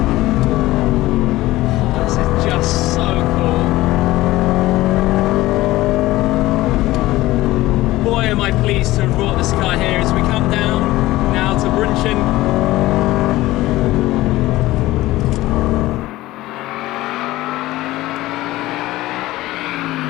Oh, this is just so cool. Boy, am I pleased to have brought this car here as we come down now to Brunchen.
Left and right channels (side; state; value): right; quieter; 17.4 dB